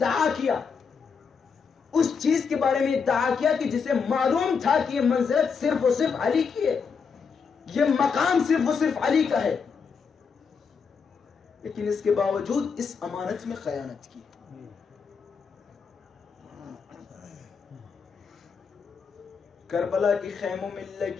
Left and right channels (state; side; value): quieter; right; 5.8 dB